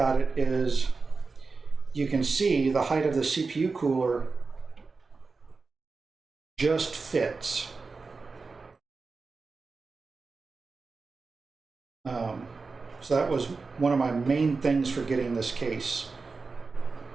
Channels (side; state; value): left; quieter; 4.3 dB